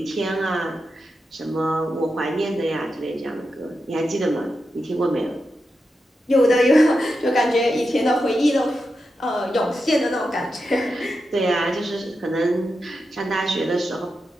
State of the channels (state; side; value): normal; both; correlation 0.88